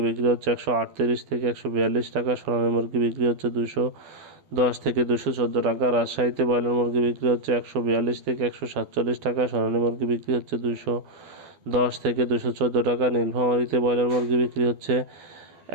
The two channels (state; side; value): late; left; 12 ms